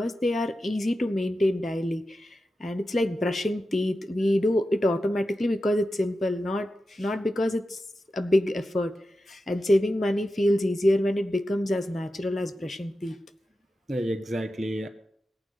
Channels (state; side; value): normal; both; correlation 0.91